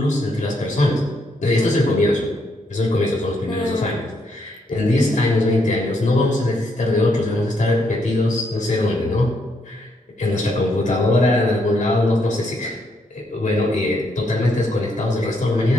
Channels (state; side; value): normal; both; correlation 0.75